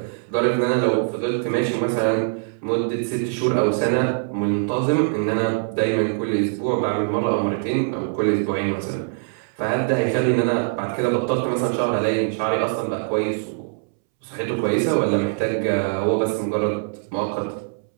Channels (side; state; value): left; silent; 64 dB below the other